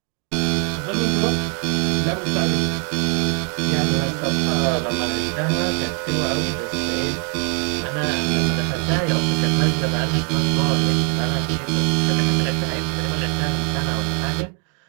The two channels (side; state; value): left; quieter; 38.0 dB